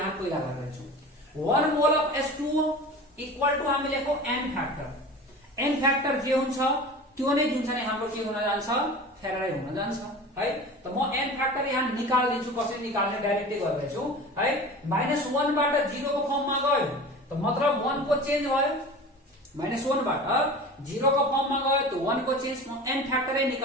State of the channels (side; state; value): both; normal; correlation 0.36